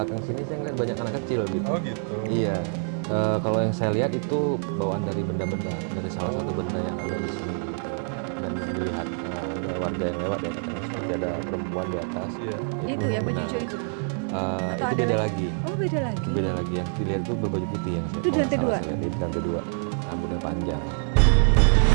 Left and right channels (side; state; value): left; silent; 56 dB below the other